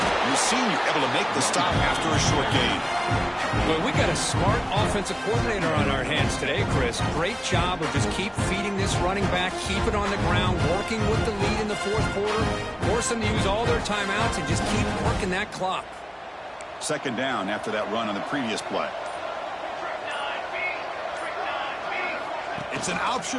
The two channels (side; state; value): both; identical; correlation 1.00